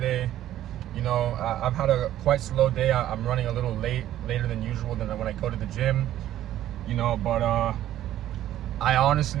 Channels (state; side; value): quieter; left; 12.7 dB